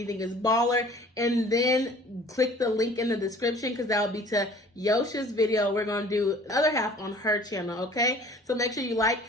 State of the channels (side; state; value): both; normal; correlation 0.50